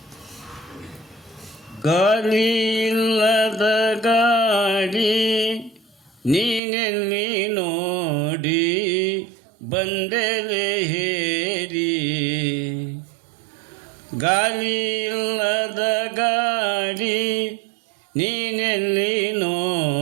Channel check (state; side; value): drops out; left; at 6.6 s